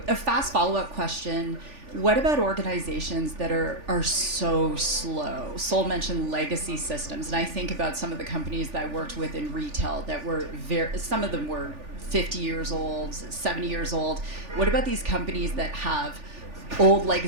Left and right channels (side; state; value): left; late; 3.4 ms